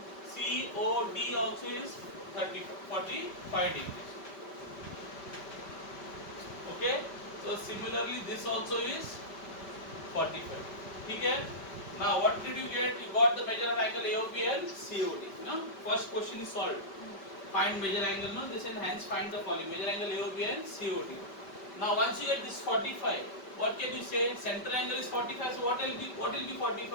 COD also is 45 degrees. Okay? So similarly, this also is 45. Okay? Now what did you get? You got the measure of angle AOB and COD. No? First question is solved. Find measure angle. No, this and hence find the following: measure angle AOB and COD. Now once you get this 45, what can you say? Center angle is 45. So what will be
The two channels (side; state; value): right; late; 5.1 ms